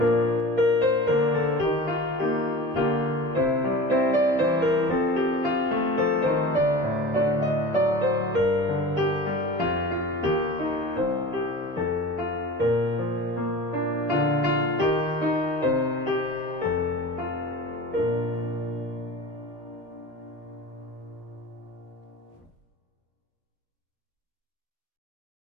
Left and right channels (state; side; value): normal; both; correlation 0.35